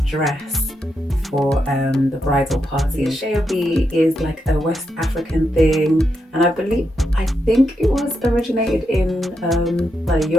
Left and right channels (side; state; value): both; normal; correlation 0.83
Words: dress for the bridal party. Asoebi is like a West African thing, and I think it was originated in by the